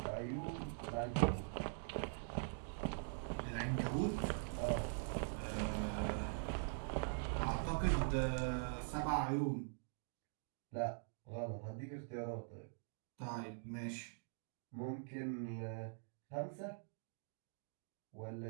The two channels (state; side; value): silent; left; digital silence